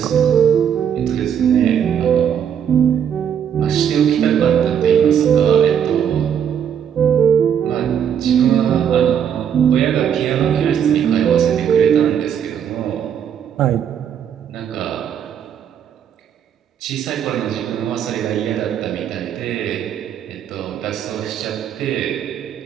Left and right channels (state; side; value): quieter; left; 8.8 dB